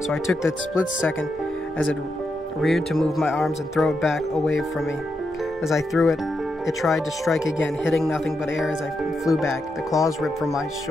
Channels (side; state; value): both; normal; correlation 0.84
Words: I took that split second as it reared to move my arms and throw it back away from me. As I threw it, it tried to strike again, hitting nothing but air as I flew back. The claws ripped from my